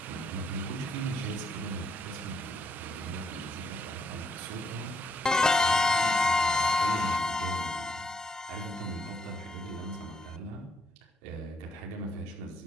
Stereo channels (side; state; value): both; normal; correlation 0.73